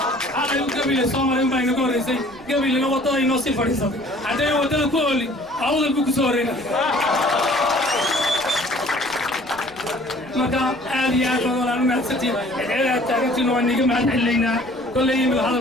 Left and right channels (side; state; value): right; noise; rumble, 24 dB below the sound